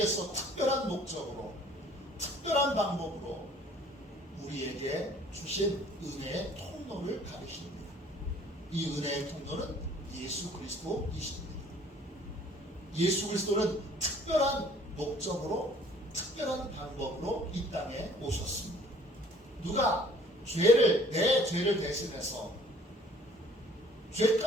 특별한 목적으로 특별한 방법으로 우리에게 주신 은혜의 통로를 가리킵니다. 이 은혜의 통로는 예수 그리스도이십니다. 예수 그리스도는 특별한 목적으로, 특별한 방법으로 이 땅에 오셨습니다. 누가 내 죄를 대신해서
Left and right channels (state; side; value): normal; both; correlation 0.55